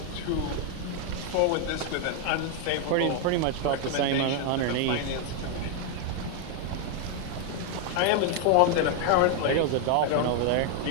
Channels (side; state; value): both; different; correlation 0.01